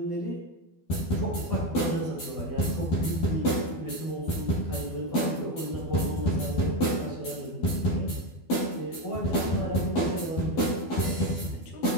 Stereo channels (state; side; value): late; right; 12 ms